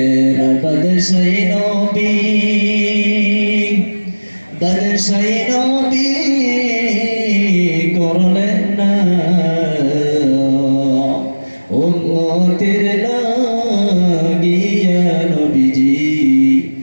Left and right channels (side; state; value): both; inverted; correlation -1.00